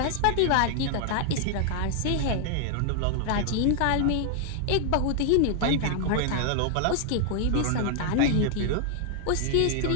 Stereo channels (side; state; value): both; different; correlation 0.00